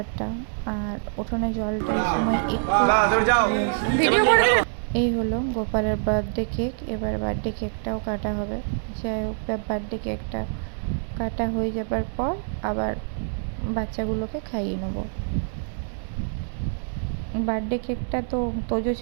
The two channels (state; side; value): silent; left; digital silence